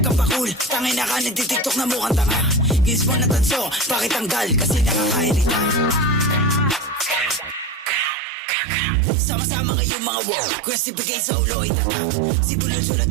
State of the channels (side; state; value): left; drops out; at 8.2 s